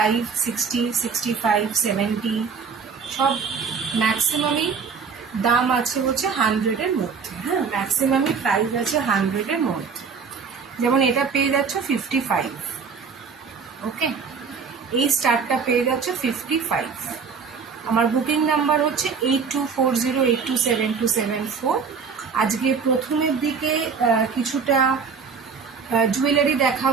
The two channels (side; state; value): left; quieter; 5.7 dB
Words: 60, 65, 70 সব ম্যাক্সিমামই দাম আছে হচ্ছে 100-এর মধ্যে। হ্যাঁ, ম্যাক্সিমামই প্রাইস আছে 100-এর মধ্যে। যেমন এটা পেয়ে যাচ্ছে 55। ওকে, এই স্টারটা পেয়ে যাচ্ছে 55। আমার বুকিং নাম্বার হচ্ছে 8240827274। আজকে প্রথমের দিকে কিছুটা জুয়েলারি